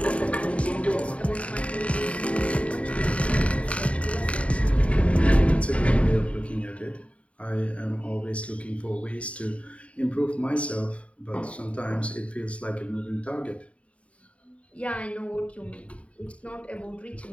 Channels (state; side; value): late; right; 0.064 ms